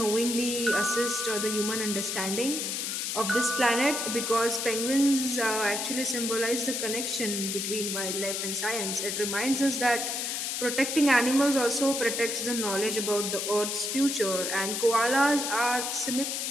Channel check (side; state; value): left; noise; hiss, 2 dB below the sound